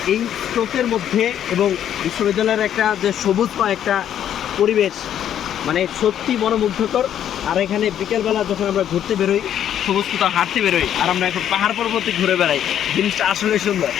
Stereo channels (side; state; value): right; quieter; 10.2 dB